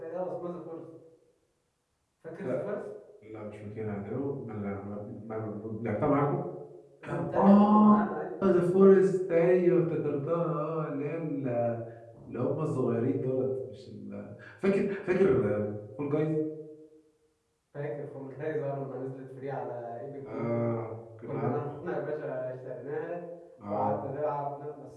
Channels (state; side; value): identical; both; correlation 1.00